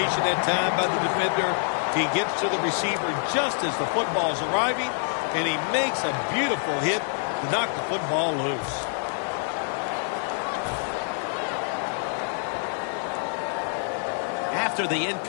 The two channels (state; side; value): silent; right; 58 dB below the other